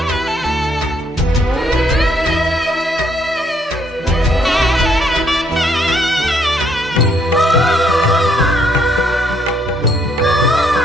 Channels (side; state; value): both; normal; correlation 0.69